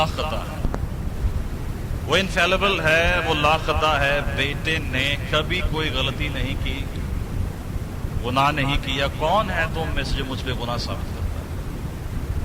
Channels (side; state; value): both; identical; correlation 1.00